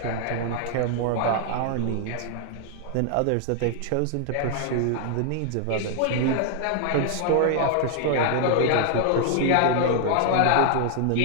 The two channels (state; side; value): different; both; correlation 0.00